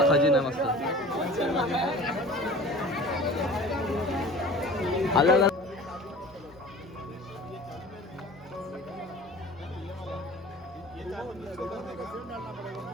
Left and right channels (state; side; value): normal; both; correlation 0.42